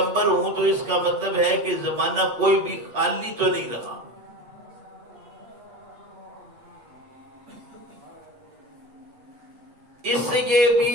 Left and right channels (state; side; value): late; left; 8.3 ms